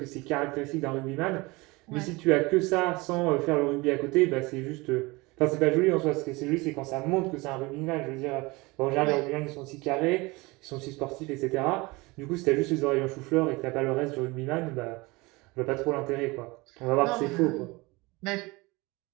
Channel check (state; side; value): quieter; left; 23.8 dB